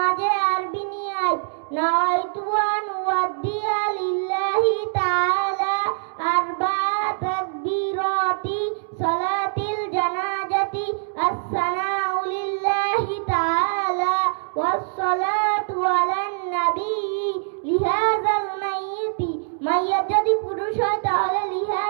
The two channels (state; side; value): silent; left; digital silence